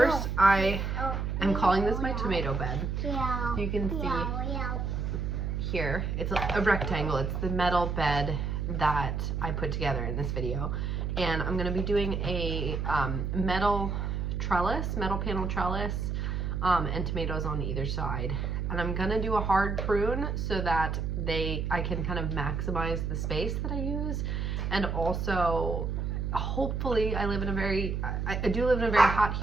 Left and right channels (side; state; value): right; noise; hum, 1 dB below the sound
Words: I am calling this my tomato bed. You can see here, it's a rectangle. It's the metal bed that I put together in this video. And I'm going to be doing a metal panel trellis and tomatoes on either side. And I'm gonna do a hard prune so that I can kind of maximize the space that I use, and also hopefully I do live in a very hot,